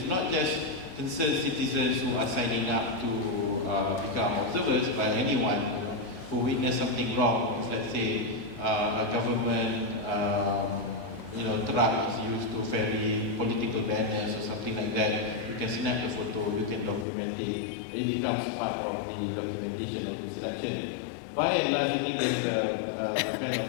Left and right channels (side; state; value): right; drops out; at 17.1 s